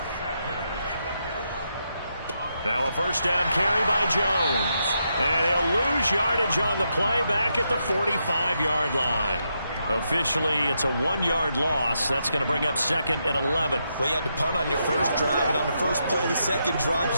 Now a first down carry by Jones. And he'll lose yardage on the play back at the 45-yard line. Officially, it's a 1-yard loss. That's going to bring up 2nd and 11. Well, you had to punt on your first drive, and on the first play of the second drive,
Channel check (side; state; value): both; inverted; correlation -0.82